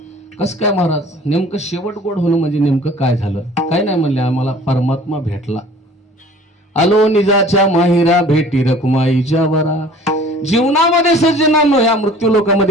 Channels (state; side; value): normal; both; correlation 0.49